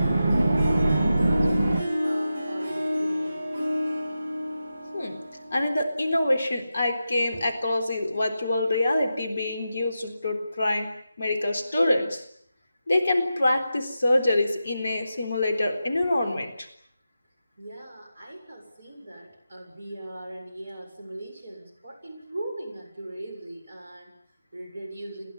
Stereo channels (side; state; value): both; inverted; correlation -0.90